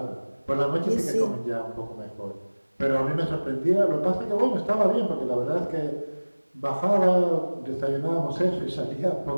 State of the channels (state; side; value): inverted; both; correlation -1.00